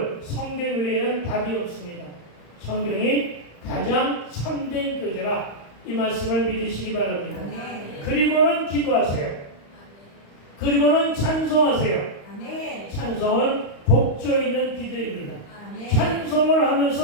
성경 외에는 답이 없습니다. 성경이 가장 참된 교재라 이 말씀을 믿으시기 바랍니다. 아멘. 그리고는 기도하세요. 그리고는 찬송하세요. 아멘. 찬송은 곡조 있는 기도입니다. 아멘. 찬송을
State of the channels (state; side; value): late; right; 35 ms